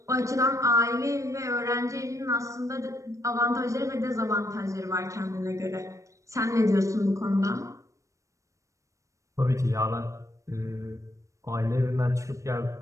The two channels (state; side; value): late; left; 0.15 ms